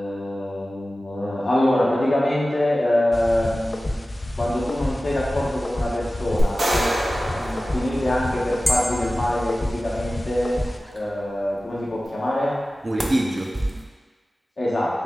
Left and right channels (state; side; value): normal; both; correlation 0.96